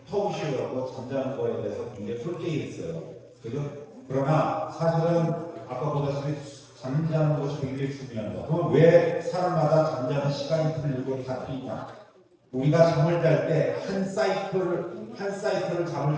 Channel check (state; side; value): identical; both; correlation 1.00